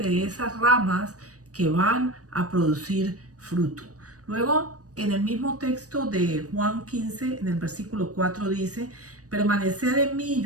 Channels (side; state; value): left; late; 0.66 ms